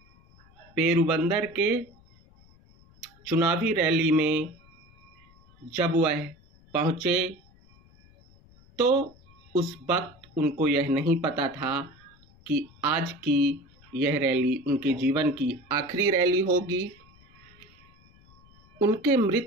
पेरुबंदर के चुनावी रैली में जब वह पहुँचे तो उस वक्त उनको यह नहीं पता था कि आज की यह रैली उनके जीवन की आखिरी रैली होगी। उनके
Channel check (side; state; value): left; noise; rumble, 27 dB below the sound